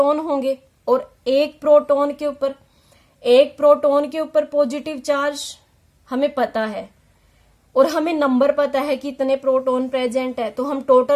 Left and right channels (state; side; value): identical; both; correlation 1.00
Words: होंगे, और एक प्रोटॉन के ऊपर पॉजिटिव चार्ज हमें पता है, और हमें नंबर पता है कि इतने प्रोटॉन प्रेजेंट है, तो हम